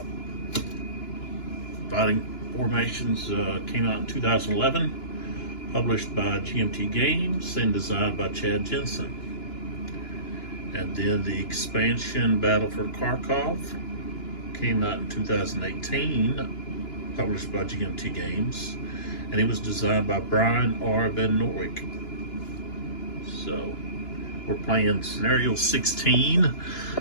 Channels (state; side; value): late; right; 2.9 ms